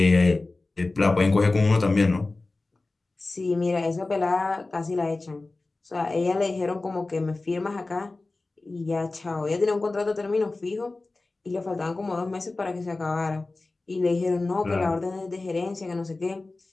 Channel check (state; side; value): quieter; right; 3.3 dB